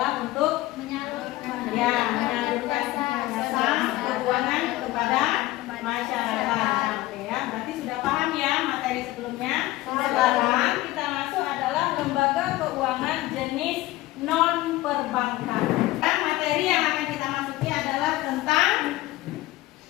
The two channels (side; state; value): right; quieter; 17.4 dB